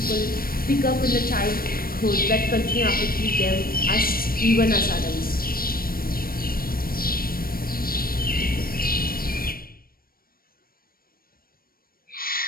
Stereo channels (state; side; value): late; right; 0.43 ms